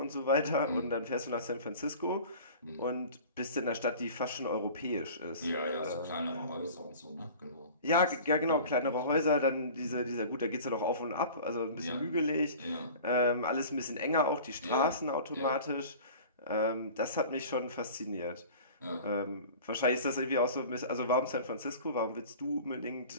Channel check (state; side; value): inverted; both; correlation -0.41